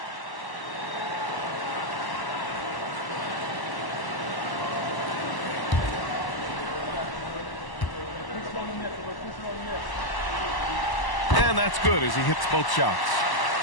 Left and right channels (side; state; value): right; late; 1.0 ms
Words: And that's good as he hits both shots.